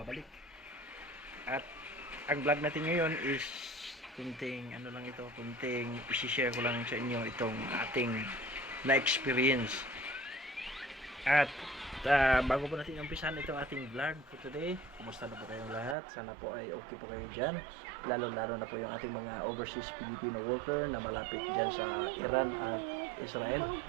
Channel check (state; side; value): drops out; left; at 16.0 s